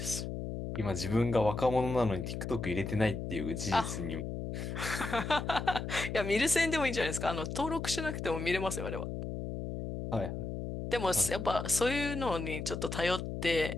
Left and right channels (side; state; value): left; noise; hum, 5 dB below the sound